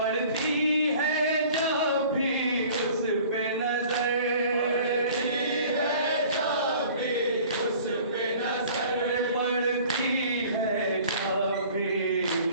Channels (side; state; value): both; inverted; correlation -0.49